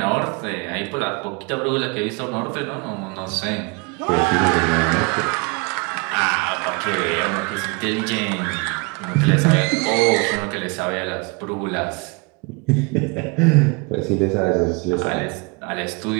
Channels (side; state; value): left; quieter; 29.9 dB